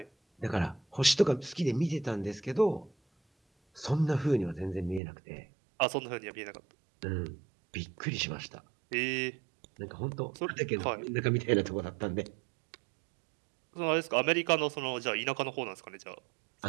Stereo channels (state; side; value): drops out; left; at 5.0 s